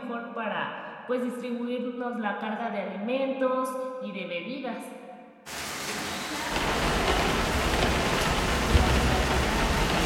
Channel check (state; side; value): identical; both; correlation 1.00